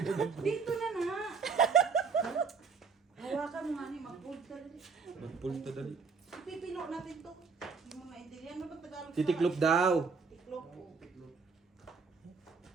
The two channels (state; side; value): quieter; left; 5.2 dB